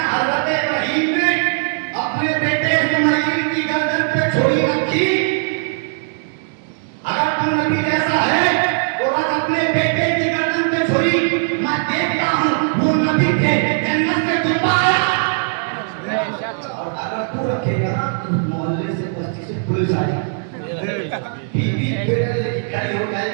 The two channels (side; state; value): left; silent; digital silence